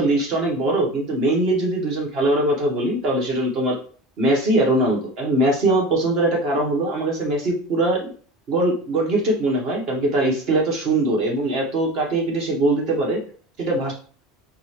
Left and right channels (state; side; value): normal; both; correlation 0.33